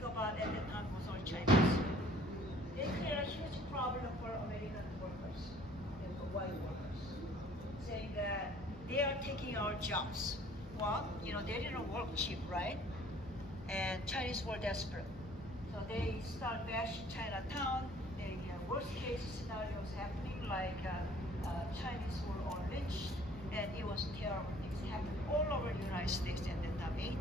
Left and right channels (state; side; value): normal; both; correlation 0.55